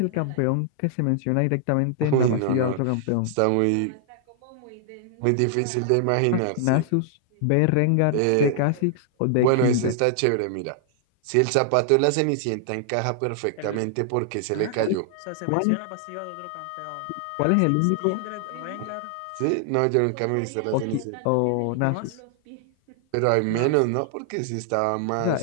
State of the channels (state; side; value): different; both; correlation 0.00